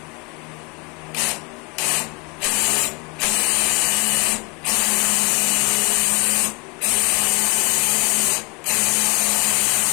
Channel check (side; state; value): right; quieter; 30.8 dB